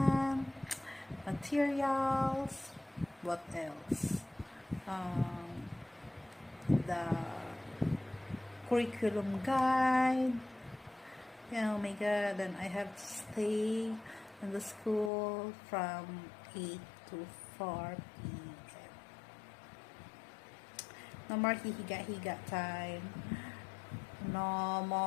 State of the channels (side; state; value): right; drops out; at 15.1 s